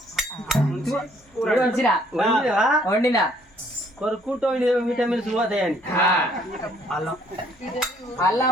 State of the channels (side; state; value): both; normal; correlation 0.63